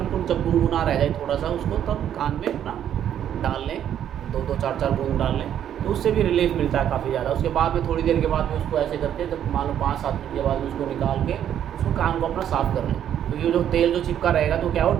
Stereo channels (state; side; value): quieter; left; 10.0 dB